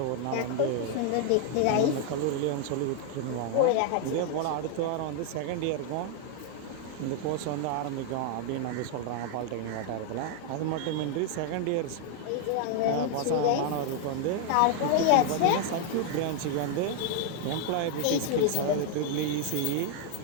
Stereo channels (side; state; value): both; different; correlation 0.00